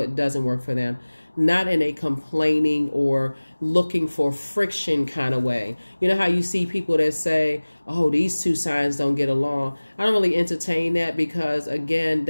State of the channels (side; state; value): both; inverted; correlation -1.00